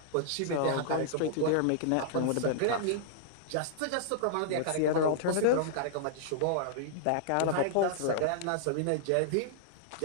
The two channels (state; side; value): different; both; correlation -0.01